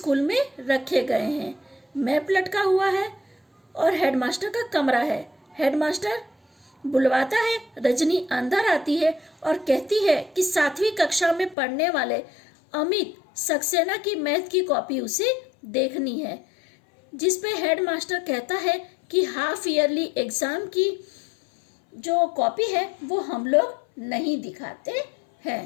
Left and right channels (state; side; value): drops out; right; at 11.6 s